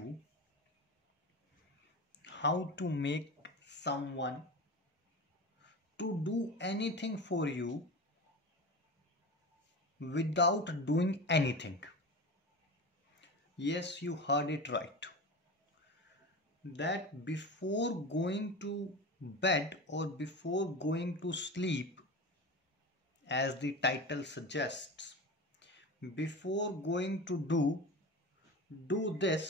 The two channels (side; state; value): both; normal; correlation 0.28